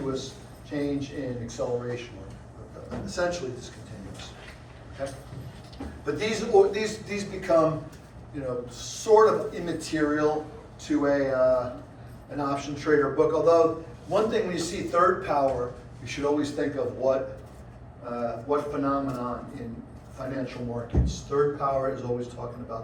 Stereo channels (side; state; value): both; identical; correlation 1.00